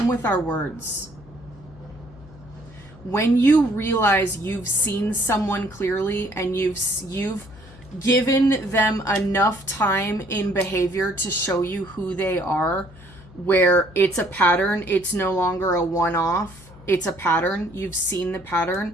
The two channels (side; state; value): left; noise; hum, 21 dB below the sound